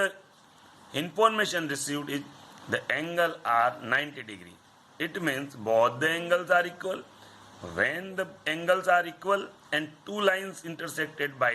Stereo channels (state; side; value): identical; both; correlation 1.00